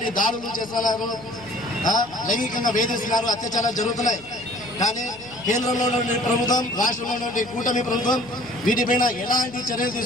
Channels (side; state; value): right; noise; hum, 21 dB below the sound